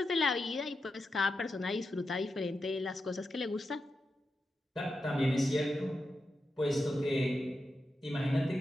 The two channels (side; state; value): both; normal; correlation 0.88